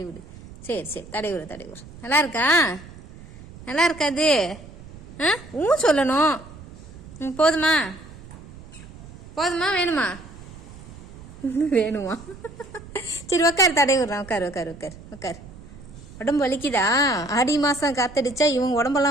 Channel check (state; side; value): noise; right; rumble, 17 dB below the sound